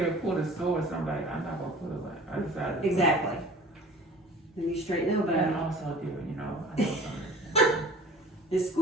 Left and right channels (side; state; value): both; normal; correlation 0.44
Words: pull the sword. So I'm like, I'm not gonna pull it. Like, I decided. to- Exactly. Then you straighten the And elbow. also do it, you know. I know something. Just